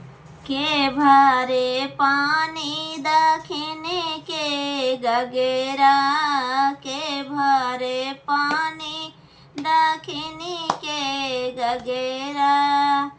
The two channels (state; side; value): identical; both; correlation 1.00